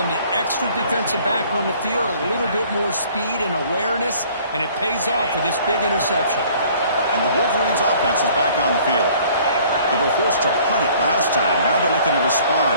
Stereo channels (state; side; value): inverted; both; correlation -0.55